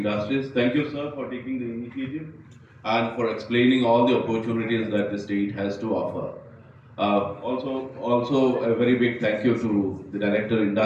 Thank you, sir, for taking the initiative and for explaining all the opportunities that the state has to offer. Also a very big thank you to the Director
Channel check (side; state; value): both; identical; correlation 1.00